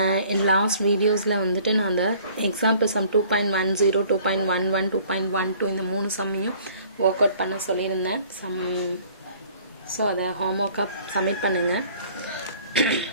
In last videos la வந்துட்டு நான் அந்த example sum 2.10 2.11 2.12 இந்த மூணு சம்மையும் work out பண்ண சொல்லியிருந்தேன். ஸோ அதை homework submit பண்ணுங்க.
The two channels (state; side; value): inverted; both; correlation -0.54